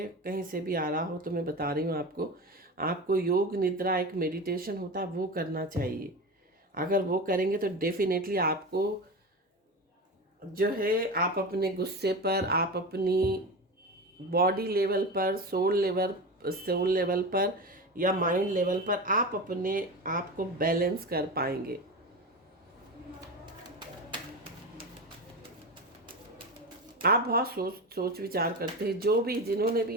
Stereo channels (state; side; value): normal; both; correlation 0.24